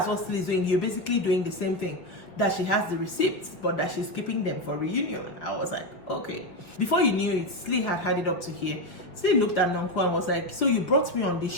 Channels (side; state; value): right; late; 6.0 ms